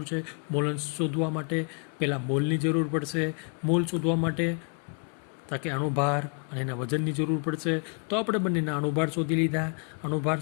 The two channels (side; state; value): right; quieter; 39.6 dB